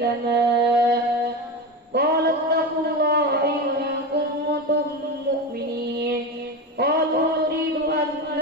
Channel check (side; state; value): both; normal; correlation 0.20